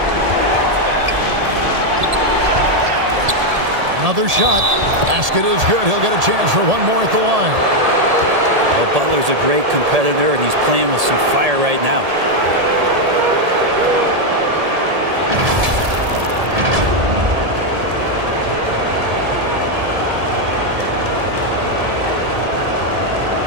Another shot. Basket is good. He'll get a chance for one more at the line. Well, Butler's a great competitor, and he's playing with some fire right now.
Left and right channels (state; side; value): late; left; 1.8 ms